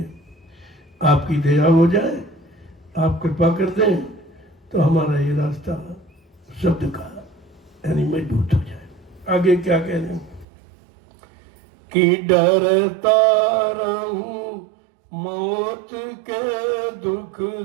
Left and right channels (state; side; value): drops out; left; at 10.5 s